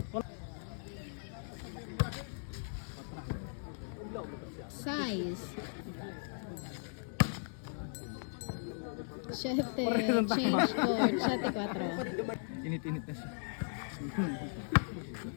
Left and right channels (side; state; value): right; silent; digital silence